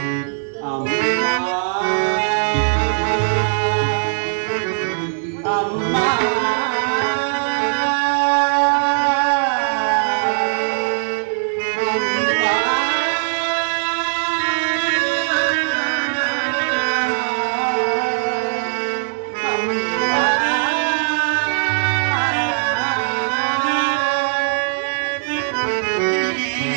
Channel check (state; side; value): silent; left; digital silence